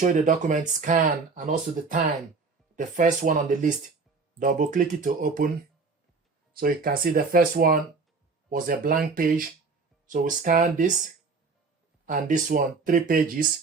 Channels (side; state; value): left; quieter; 4.4 dB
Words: you the document scan and also the time, the first one on the list. Double click it to open. So you can see the first one was a blank page. So we scan this and this one, 3